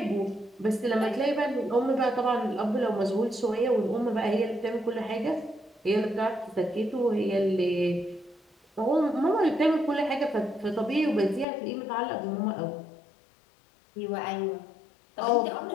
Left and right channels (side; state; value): right; drops out; at 11.5 s